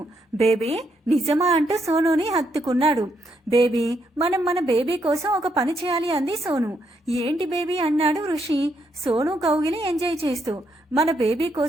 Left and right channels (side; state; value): both; normal; correlation 0.77